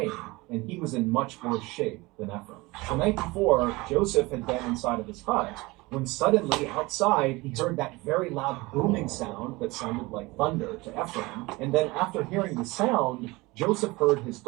and he was in much worse shape than Ephraim. The night before, Joseph had been inside of his hut, when suddenly outside he heard that very loud booming sound that sounded like thunder to Ephraim. And then after hearing the sound, Joseph heard his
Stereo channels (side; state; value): left; quieter; 22.5 dB